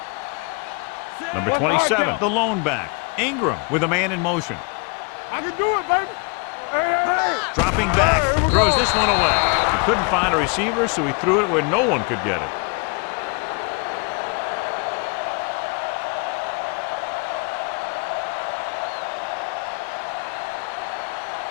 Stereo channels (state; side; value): quieter; right; 32.6 dB